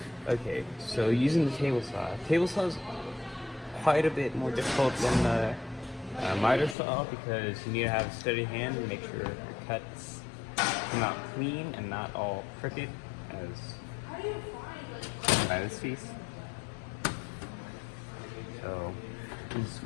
Okay, so using the table saw is quite a bit more difficult than the miter saw because you need to have a steady hand and make sure your cuts come out clean and not all crooked as by this piece. So you can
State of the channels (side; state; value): right; drops out; at 6.8 s